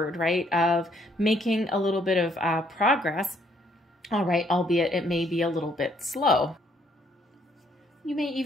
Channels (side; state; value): both; normal; correlation 0.67